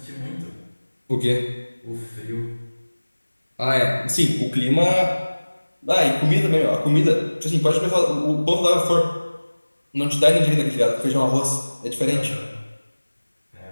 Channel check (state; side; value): inverted; both; correlation -1.00